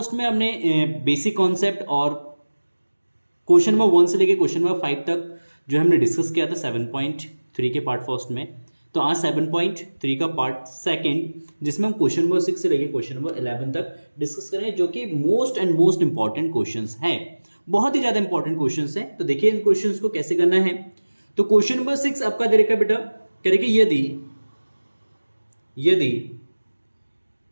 में हमने बेसिक कॉन्सेप्ट और क्वेश्चन नंबर 1 से लेकर क्वेश्चन नंबर 5 तक जो हमने डिस्कस किया था 7.3 के पार्ट फर्स्ट में। तो आज 7.3 का पार्ट सेकंड, जिसमें हम क्वेश्चन नंबर 6 से लेकर क्वेश्चन नंबर 11 तक डिस्कस करेंगे, जो कि मोस्ट इंपॉर्टेंट क्वेश्चंस हैं। बहुत ही ज़्यादा इंपॉर्टेंट क्वेश्चंस हैं। तो देखिए इन क्वेश्चंस को कैसे करना है। तो क्वेश्चन नंबर 6 आपका दे रखा बेटा, करेंगे यदि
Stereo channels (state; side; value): inverted; both; correlation -1.00